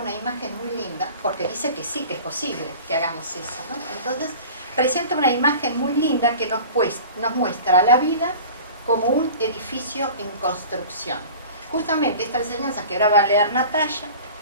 imagen muy linda, porque dice que sí, que es posible que hagamos eso, ¿no? Entonces, presenta una imagen muy linda que nos muestra la vida como un edificio en construcción. Justamente esta enseñanza que ahora va a leer Natalia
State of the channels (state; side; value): inverted; both; correlation -0.40